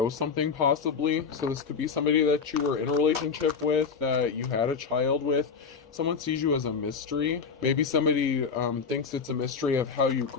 something possibly. So this could be somebody that you were in a relationship with, that you had a child with. Someone sees you as a mystery. Maybe somebody thinks it's a mystery of how you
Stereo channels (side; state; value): right; quieter; 5.6 dB